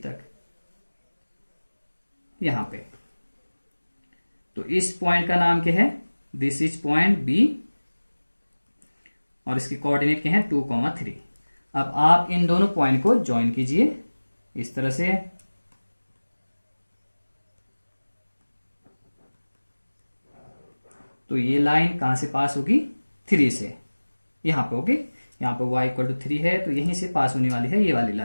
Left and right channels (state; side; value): inverted; both; correlation -1.00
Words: तक यहां पे. तो इस पॉइंट का नाम क्या है? दिस इज पॉइंट B और इसके कोऑर्डिनेट क्या है? 2, 3. अब आप इन दोनों पॉइंट को ज्वाइन कीजिए इस तरह से. तो ये लाइन कहां से पास होगी? 3 से यहां पे. ओके, यहां पे y = 3 है तो यहीं से पास होने वाली है ये वाली